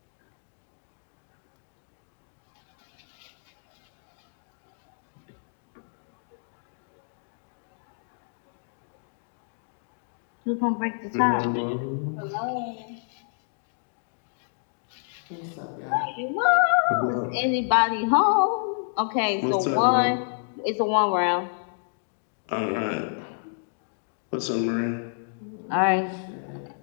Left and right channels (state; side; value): silent; right; 59 dB below the other